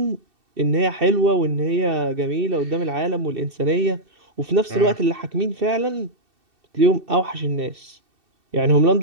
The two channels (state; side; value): late; left; 2.7 ms